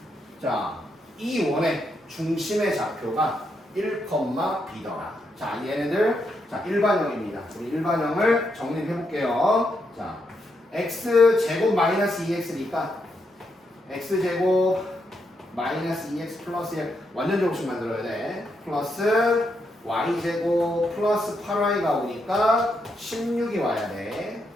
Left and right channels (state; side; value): normal; both; correlation 0.80